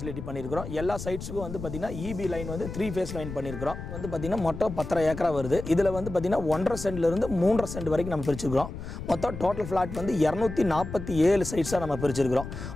பண்ணியிருக்கிறோம். எல்லா சைட்ஸுக்கும் வந்து பார்த்திங்கன்னா இபி லைன் வந்து 3 ஃபேஸ் லைன் பண்ணியிருக்கிறோம். வந்து பார்த்திங்கன்னா மொத்தம் 10 ஏக்கரா வருது. இதில் வந்து பார்த்திங்கன்னா 1.5 சென்ட்லேருந்து 3.5 சென்ட் வரைக்கும் நம்ம பிரிச்சுக்கிறோம். மொத்தம் டோட்டல் ஃப்ளாட் வந்து 247 சைட்ஸாக நம்ம பிரிச்சிருக்கிறோம்.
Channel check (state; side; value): noise; left; rumble, 9 dB below the sound